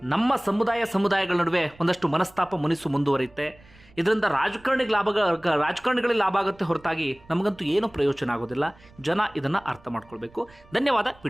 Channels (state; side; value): noise; right; rumble, 26 dB below the sound